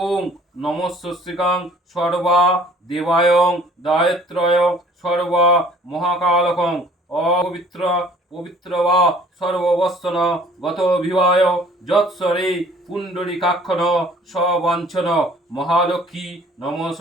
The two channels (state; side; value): normal; both; correlation 0.54